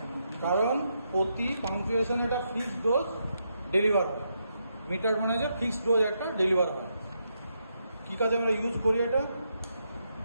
কারণ প্রতি পাংচুয়েশন একটা ফিক্সড ডোজ ডেলিভার হয়। মিটার মানে যে ফিক্সড ডোজ একটা ডেলিভার হয়। কি কাজে আমরা ইউজ করি এটা?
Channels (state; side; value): inverted; both; correlation -0.81